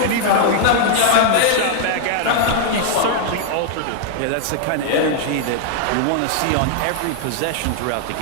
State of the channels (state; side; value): different; both; correlation -0.01